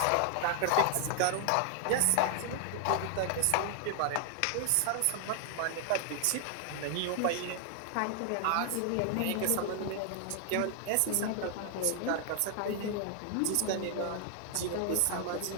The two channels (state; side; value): different; both; correlation 0.00